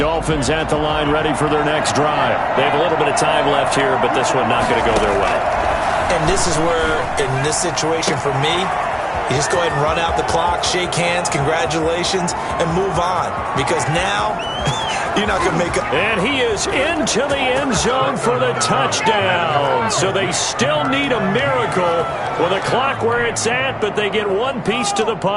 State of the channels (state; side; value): identical; both; correlation 1.00